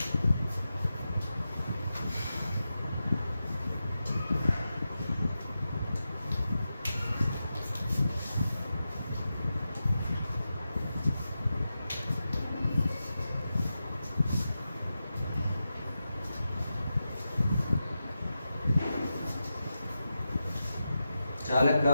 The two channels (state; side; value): inverted; both; correlation -0.91